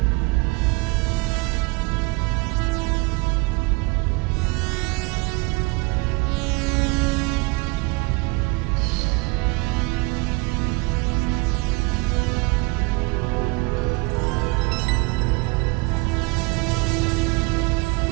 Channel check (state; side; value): quieter; left; 27.0 dB